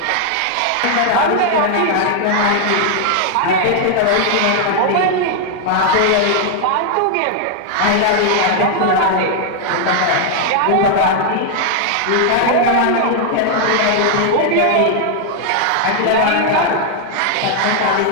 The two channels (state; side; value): different; both; correlation 0.00